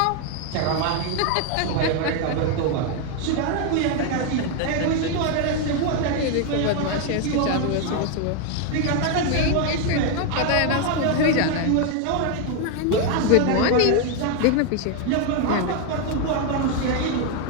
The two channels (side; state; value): both; different; correlation 0.01